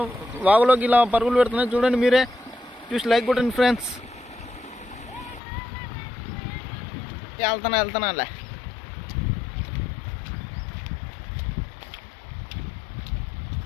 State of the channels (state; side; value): drops out; right; at 5.4 s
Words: వాగులోకి ఇలా పరుగులు పెడుతున్నాయి. చూడండి మీరే, చూసి లైక్ కొట్టండి ఫ్రెండ్స్. వెళ్తానా